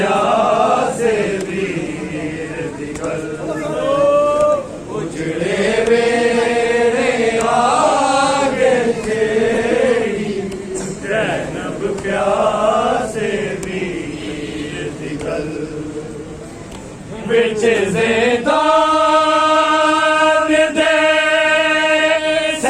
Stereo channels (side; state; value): both; identical; correlation 1.00